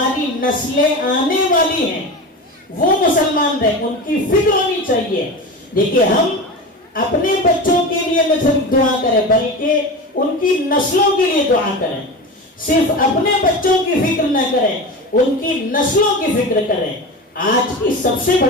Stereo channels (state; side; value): normal; both; correlation 0.27